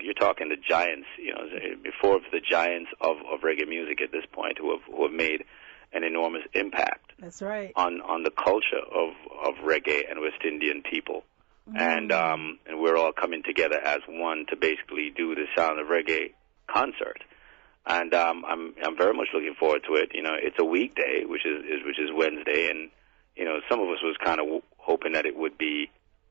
You're talking the giants, you know, before the giants of reggae music at this point who have made an enormous impact. That's right. On the culture of reggae and West Indian people. And we're all coming together as one to basically do the Sound of Reggae concert. And I'm very much looking forward to it. You know, it's a weekday, which is Wednesday, and you know, some of us was kind of hoping that it would be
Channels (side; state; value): left; quieter; 25.3 dB